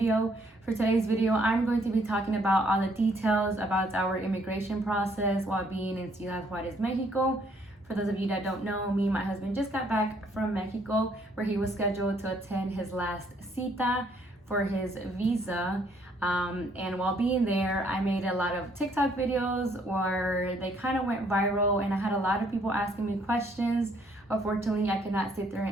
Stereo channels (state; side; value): normal; both; correlation 0.66